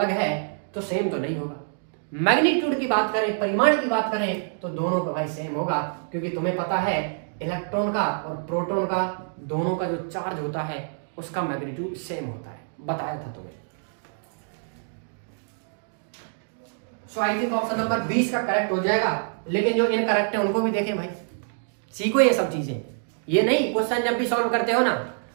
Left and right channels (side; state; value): left; silent; digital silence